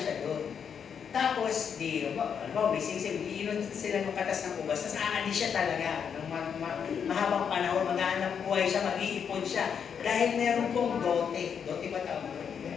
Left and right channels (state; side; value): quieter; right; 7.3 dB